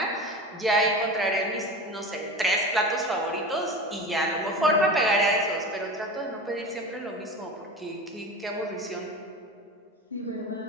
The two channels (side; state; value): both; normal; correlation 0.30